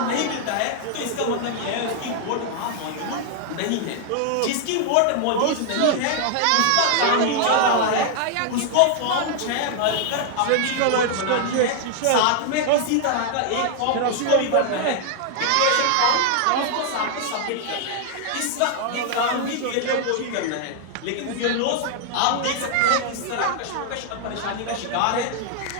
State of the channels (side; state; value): both; different; correlation 0.00